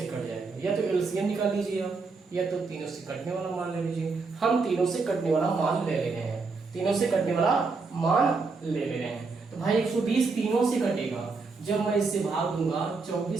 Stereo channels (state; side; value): quieter; left; 4.3 dB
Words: कट जाएगा। या तो एलसीएम निकाल लीजिए आप, या तो तीनों से कटने वाला मान ले लीजिए। हम तीनों से कटने वाला मान ले रहे हैं, तीनों से कटने वाला मान ले रहे हैं। तो भाई 120 तीनों से कटेगा। जब मैं इससे भाग दूंगा